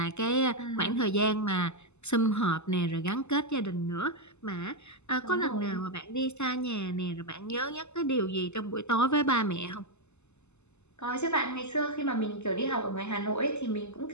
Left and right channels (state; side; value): late; right; 0.82 ms